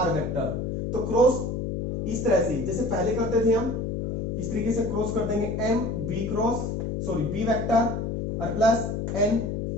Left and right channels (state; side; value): noise; left; hum, 2 dB below the sound